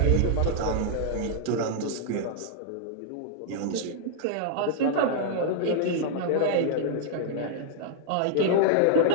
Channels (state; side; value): different; both; correlation -0.01